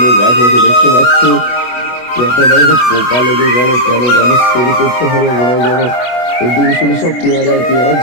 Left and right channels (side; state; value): right; late; 24 ms